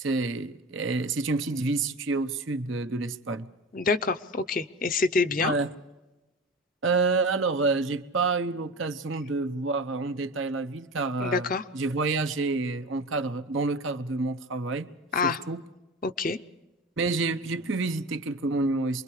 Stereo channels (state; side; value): normal; both; correlation 0.32